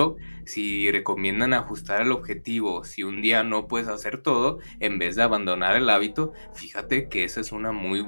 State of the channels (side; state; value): both; inverted; correlation -1.00